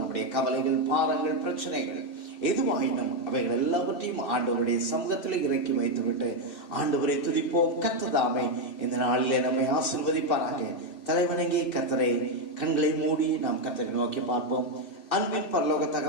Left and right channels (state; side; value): late; right; 2.6 ms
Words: கவலைகள், பாரங்கள், பிரச்சனைகள் எதுவாயினும் அவைகள் எல்லாவற்றையும் ஆண்டவருடைய சமூகத்தில் இறக்கி வைத்துவிட்டு ஆண்டவரை துதிப்போம். கர்த்தர் தாமே இந்த நாளிலே நம்மை ஆசீர்வதிப்பாராக. தலைவணங்கி கர்த்தரை கண்களை மூடி நாம் கர்த்தரை நோக்கி பார்ப்போம். அன்பின் பரலோக